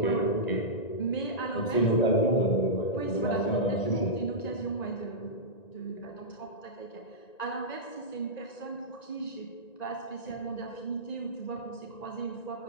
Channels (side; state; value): right; late; 1.9 ms